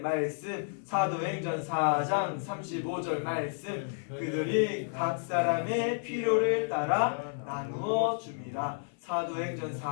사도행전 4장 35절 말씀. 그들이 각 사람의 필요를 따라 나누어 줍니다. 사도행전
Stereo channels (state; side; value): silent; right; 57 dB below the other